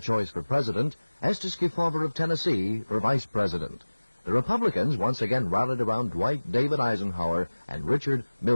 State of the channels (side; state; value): both; inverted; correlation -1.00